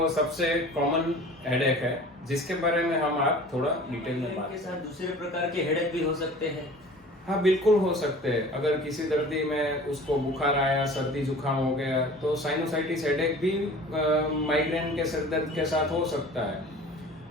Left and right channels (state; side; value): normal; both; correlation 0.43